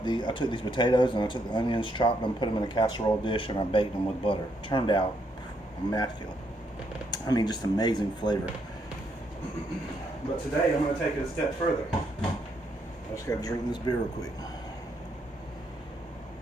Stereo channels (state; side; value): normal; both; correlation 0.75